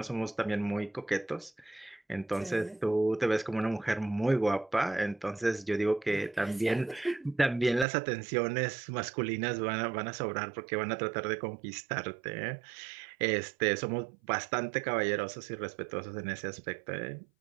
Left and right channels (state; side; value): drops out; left; at 7.9 s